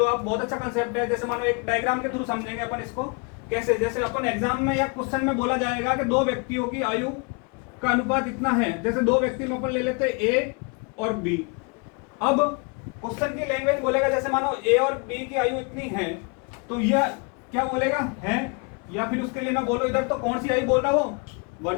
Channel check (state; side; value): quieter; right; 32.7 dB